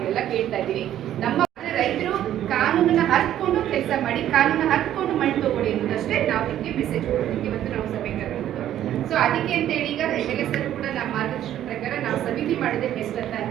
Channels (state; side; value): quieter; left; 11.7 dB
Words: ಕೇಳ್ತಾ ಇದೀವಿ. ನಮ್ಮ ರೈತರು ಕಾನೂನನ್ನ ಹರ್ಕೊಂಡು ಕೆಲಸ ಮಾಡಿ, ಕಾನೂನನ್ನ ಹರ್ಕೊಂಡು ಮಣ್ಣು ತಗೊಳ್ಳಿ ಅನ್ನೋದಷ್ಟೇ ನಾವು ನಿಮಗೆ ಮೆಸೇಜ್ ಕೊಡೋದಕ್ಕೆ ಇವತ್ತು ನಾವು ಸಭೆ ಕರೆದಿದ್ದು. ಸೊ ಅದಕ್ಕೆ ಅಂತ ಹೇಳಿ ಈಗ ಸರ್ ಕೂಡ ನಮ್ಮ ಮಾರ್ಗದರ್ಶನ ಪ್ರಕಾರ ನಾವು ಸಮಿತಿ ಮಾಡೋದೇ ಬೆಸ್ಟ್ ಅಂತ